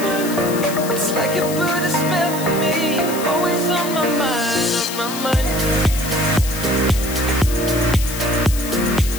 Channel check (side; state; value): left; noise; hiss, 9 dB below the sound